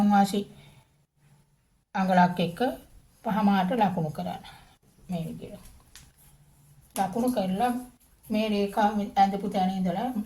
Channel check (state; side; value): identical; both; correlation 1.00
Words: වාසි අඟලක් එක්ක 5මාරට ලකුණු කරන්න. මේ විදියට. ලකුණු කරලා මේ රේඛාව ඇඳපු තැන ඉඳලා